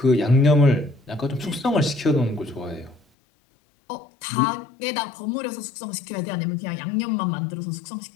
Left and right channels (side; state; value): right; drops out; at 3.0 s